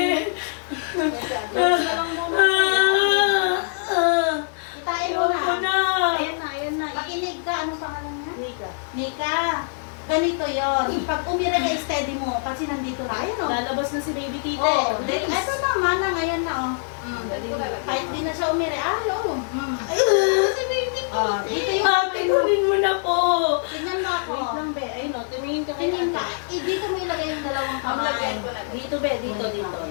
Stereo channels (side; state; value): right; silent; digital silence